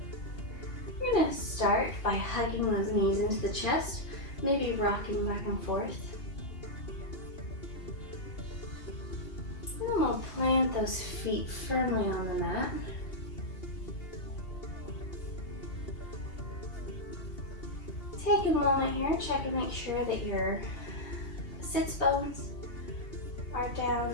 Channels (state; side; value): late; right; 2.7 ms